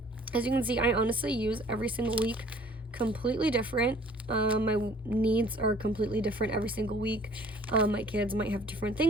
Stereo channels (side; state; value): both; normal; correlation 0.54